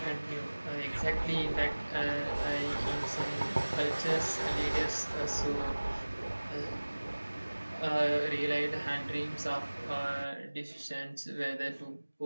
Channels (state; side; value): inverted; both; correlation -1.00